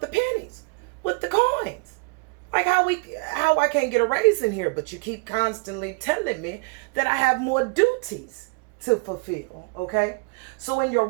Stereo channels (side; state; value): left; quieter; 32.8 dB